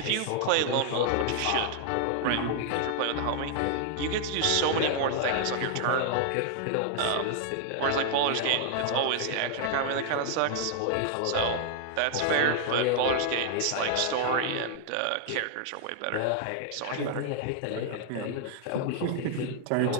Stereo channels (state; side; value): different; both; correlation 0.00